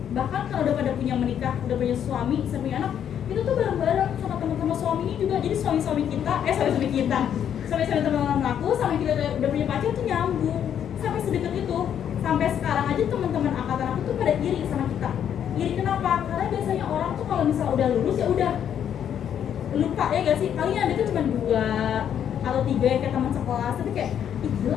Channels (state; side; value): quieter; right; 9.2 dB